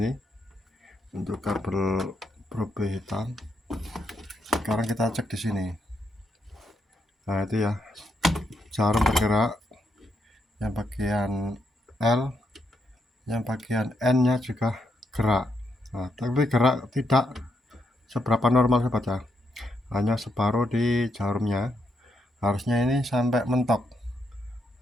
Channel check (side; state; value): both; normal; correlation 0.79